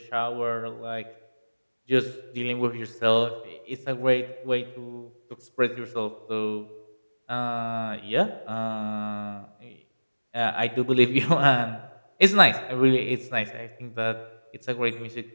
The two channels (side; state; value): both; inverted; correlation -1.00